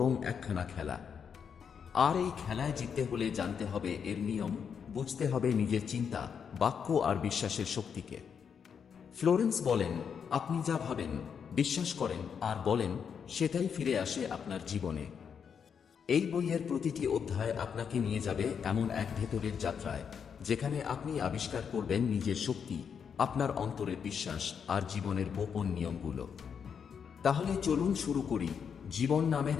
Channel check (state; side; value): quieter; right; 7.0 dB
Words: একখানা খেলা। আর এই খেলায় জিততে হলে জানতে হবে এর নিয়ম, বুঝতে হবে নিজের চিন্তা, বাক্য আর বিশ্বাসের শক্তিকে। ফ্লোরেন্স বলেন, আপনি যা ভাবেন, বিশ্বাস করেন আর বলেন, সেটাই ফিরে আসে আপনার জীবনে। এই বইয়ের প্রতিটি অধ্যায় আপনাকে নিয়ে যাবে এমন এক ভেতরের যাত্রায়, যেখানে আপনি আবিষ্কার করবেন নিজের শক্তি, আপনার অন্তরের বিশ্বাস আর জীবনের গোপন নিয়মগুলো। তাহলে চলুন শুরু করি জীবন নামের